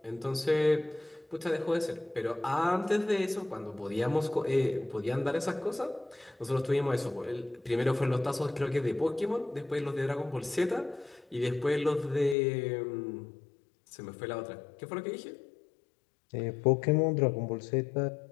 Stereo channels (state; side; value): drops out; right; at 12.4 s